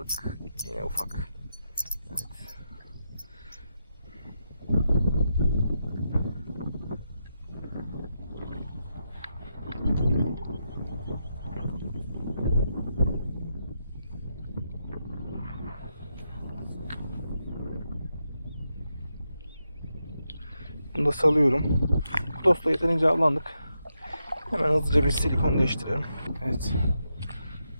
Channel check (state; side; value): inverted; both; correlation -0.85